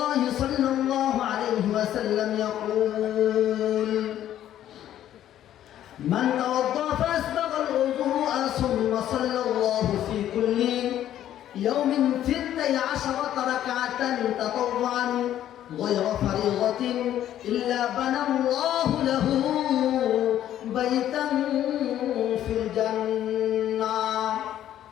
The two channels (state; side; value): quieter; right; 11.7 dB